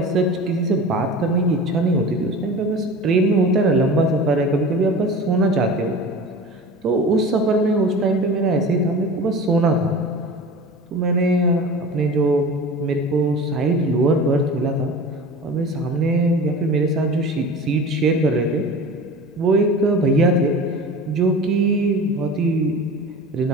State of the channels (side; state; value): both; normal; correlation 0.36